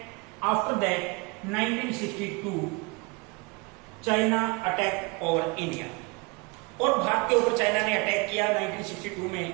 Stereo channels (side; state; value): left; quieter; 28.5 dB